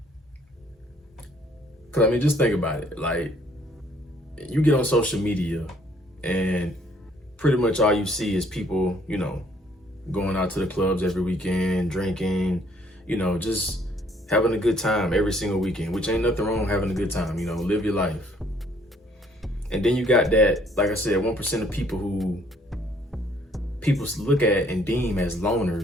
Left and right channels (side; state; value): both; normal; correlation 0.63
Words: I mean, just think about it. Like, you get on social media and pretty much all you see is people, going out to the clubs every weekend, drinking, just having a good time every single weekend, which ain't nothing wrong with having a good time, live your life. And then you got that, like I said, 1% of people who people look at and deem as